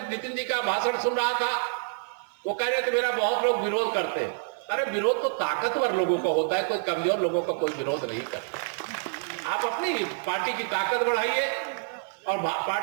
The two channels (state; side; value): silent; left; digital silence